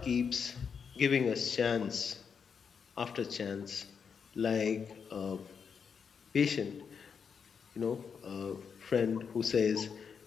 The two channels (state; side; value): quieter; right; 6.4 dB